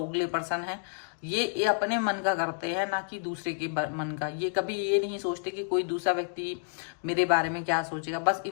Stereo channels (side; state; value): right; silent; digital silence